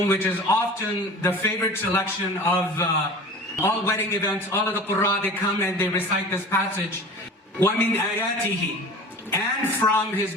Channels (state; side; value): normal; both; correlation 0.38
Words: which is often the favorite selection of all wedding events. All of the Qur'an, they come and they recite this passage. وَمِنْ آيَاتِهِ, and from his